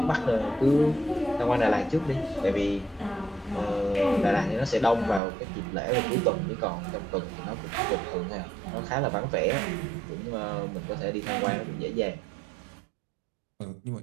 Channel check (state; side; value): drops out; left; at 5.2 s